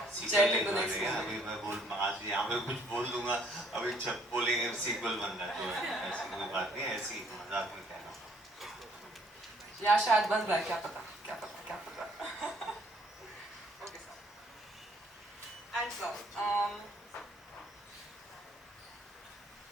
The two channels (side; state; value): both; normal; correlation 0.63